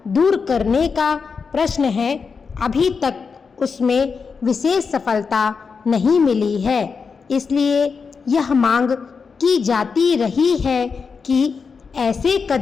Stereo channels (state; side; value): quieter; right; 5.4 dB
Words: दूर करने का प्रश्न है, अभी तक उसमें विशेष सफलता नहीं मिली है। इसलिए यह मांग की जाती रही है कि ऐसे